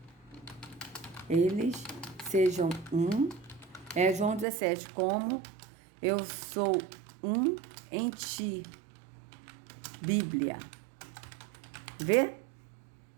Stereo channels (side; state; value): left; drops out; at 4.5 s